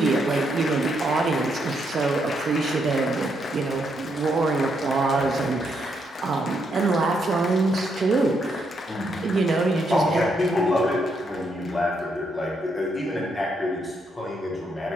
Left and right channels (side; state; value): both; normal; correlation 0.77